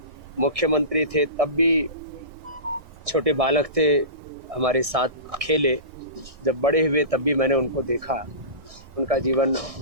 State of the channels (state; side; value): late; left; 1.6 ms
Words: मुख्यमंत्री थे तब भी छोटे बालक थे, हमारे साथ खेले। जब बड़े हुए तब भी मैंने उनको देखा। उनका जीवन